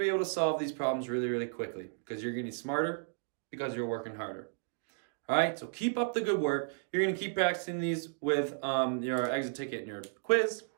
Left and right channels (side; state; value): left; silent; digital silence